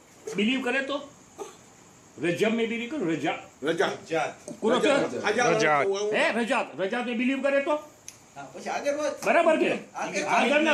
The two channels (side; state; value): both; identical; correlation 1.00